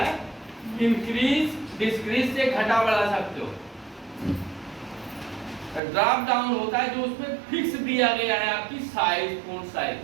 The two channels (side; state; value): left; drops out; at 5.8 s